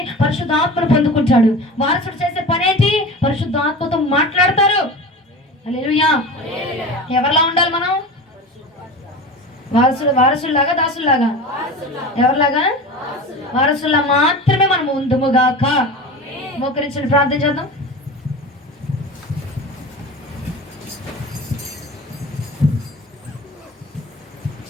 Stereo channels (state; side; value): normal; both; correlation 0.32